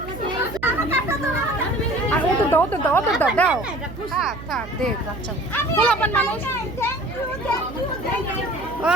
আর ও তো দাও দাও। থাক দেখ বাচ্চা খোলাপান মানুষ।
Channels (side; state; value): right; noise; hum, 13 dB below the sound